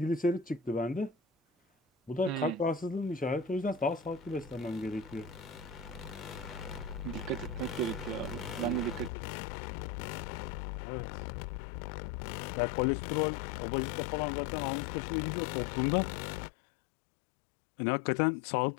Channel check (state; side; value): drops out; right; at 9.1 s